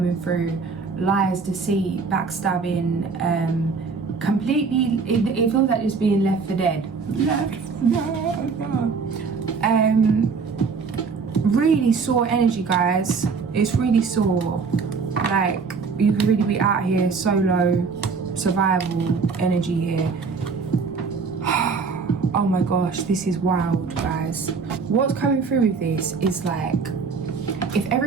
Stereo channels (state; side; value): quieter; left; 5.0 dB